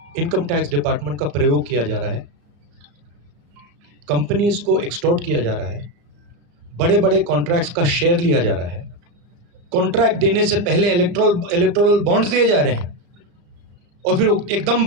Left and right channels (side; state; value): left; late; 35 ms